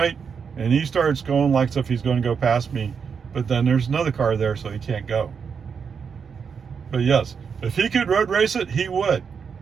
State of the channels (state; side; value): quieter; left; 6.3 dB